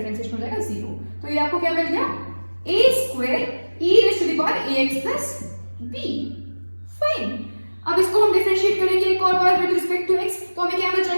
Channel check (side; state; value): both; inverted; correlation -1.00